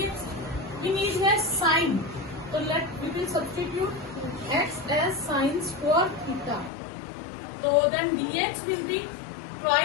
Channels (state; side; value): drops out; right; at 6.7 s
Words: We need here sine. So we will substitute x as sine square theta. So then dx will be